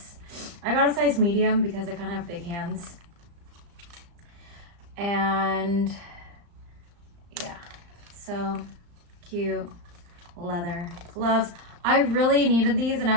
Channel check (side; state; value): left; late; 35 ms